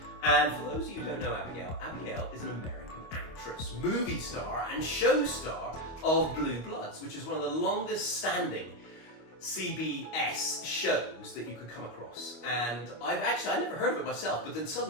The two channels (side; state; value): right; late; 25 ms